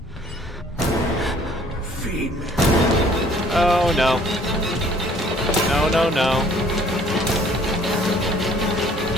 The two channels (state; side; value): normal; both; correlation 0.57